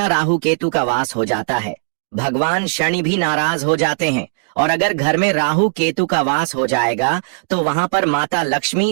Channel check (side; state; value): left; quieter; 36.6 dB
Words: राहु केतु का वास हो जाता है। भगवान शनि भी नाराज हो जाते हैं, और अगर घर में राहु केतु का वास हो जाएगा तो वहां पर माता लक्ष्मी